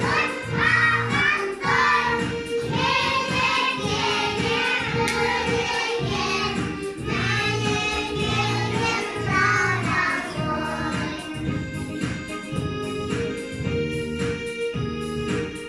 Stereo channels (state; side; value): identical; both; correlation 1.00